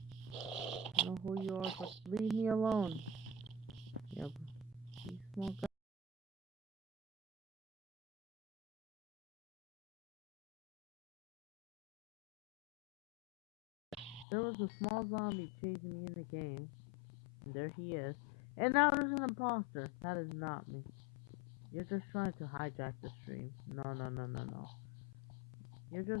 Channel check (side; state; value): right; drops out; at 14.2 s